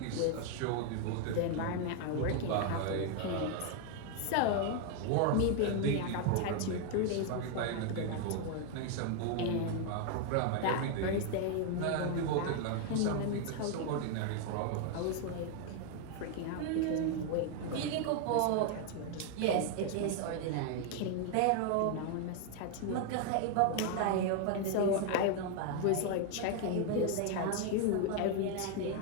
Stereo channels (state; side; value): different; both; correlation 0.01